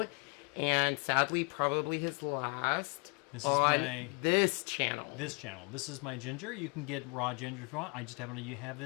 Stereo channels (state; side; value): quieter; right; 33.8 dB